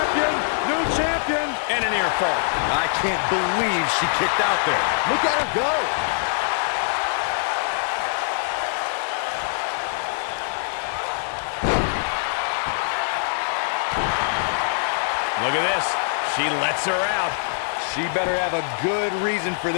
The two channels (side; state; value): right; silent; digital silence